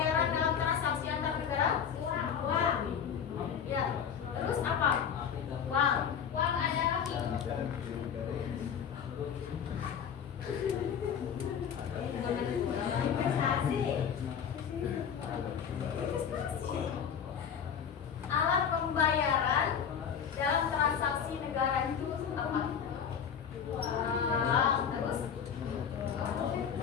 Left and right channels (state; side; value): quieter; right; 7.6 dB